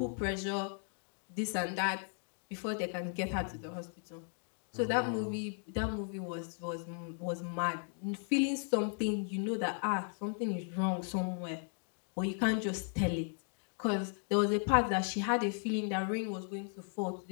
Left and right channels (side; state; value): right; silent; 54 dB below the other